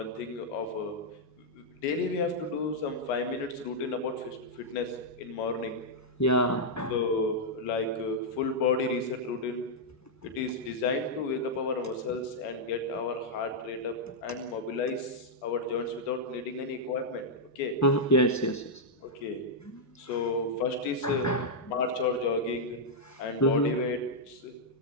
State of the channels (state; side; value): normal; both; correlation -0.05